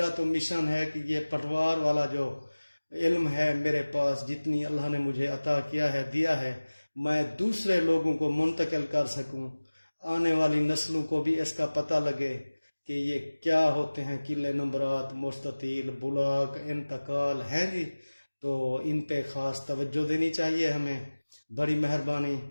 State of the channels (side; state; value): both; inverted; correlation -1.00